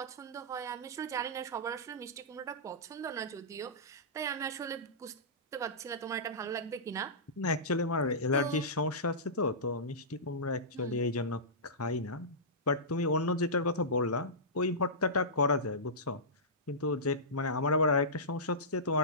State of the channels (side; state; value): both; normal; correlation -0.18